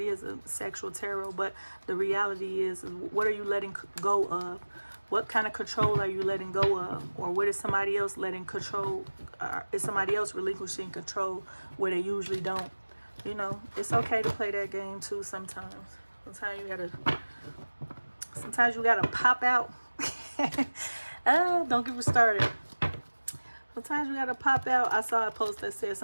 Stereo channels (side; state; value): both; inverted; correlation -1.00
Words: is a sexual tarot, but the reality is, what are you letting go of? What kind of control are you letting go of? Or what is somebody else letting control? Is somebody else relinquishing control where they usually don't? You know, it's okay to play that game too sometimes. Sometimes you gotta pop out. Don't get me started. Sometimes you gotta pop out. I saw a post that said